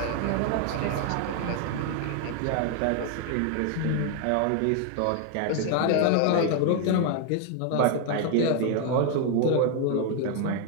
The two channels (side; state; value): both; different; correlation 0.01